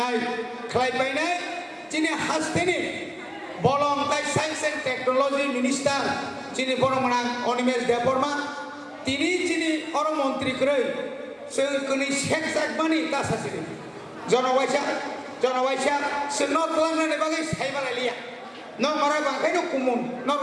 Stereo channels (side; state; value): both; identical; correlation 1.00